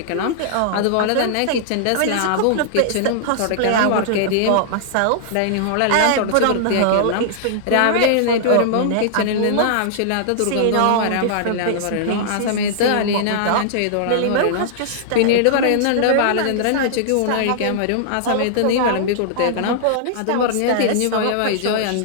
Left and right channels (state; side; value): different; both; correlation -0.01